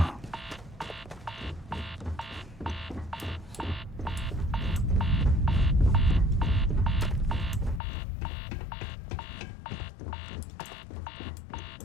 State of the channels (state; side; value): drops out; right; at 7.8 s